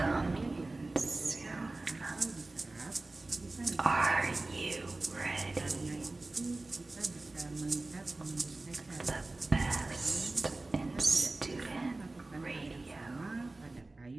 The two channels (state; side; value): quieter; left; 3.1 dB